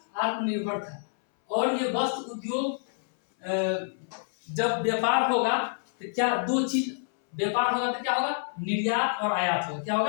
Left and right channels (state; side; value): silent; right; 60 dB below the other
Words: आत्मनिर्भर था। और ये वस्त्र उद्योग जब व्यापार होगा तो क्या दो चीज व्यापार होगा तो क्या होगा? निर्यात और आयात होगा। क्या